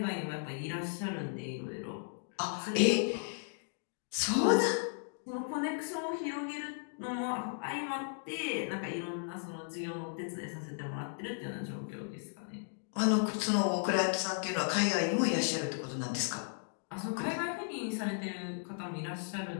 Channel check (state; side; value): silent; right; digital silence